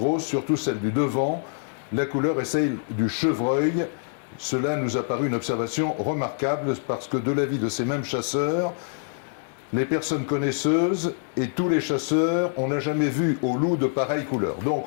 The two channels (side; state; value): right; silent; digital silence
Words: surtout celles du devant. La couleur est celle du chevreuil. Cela nous a paru une observation remarquable parce que de l'avis de ces mêmes chasseurs, les personnes connaisseuses et tous les chasseurs, on n'a jamais vu au loup de pareille couleur. Donc